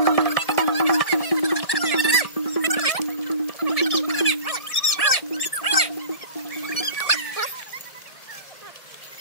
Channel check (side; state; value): right; late; 1.7 ms